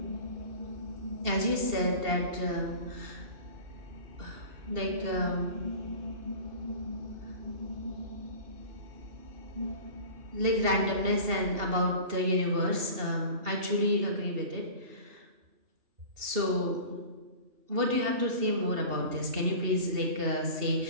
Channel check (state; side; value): late; left; 2.7 ms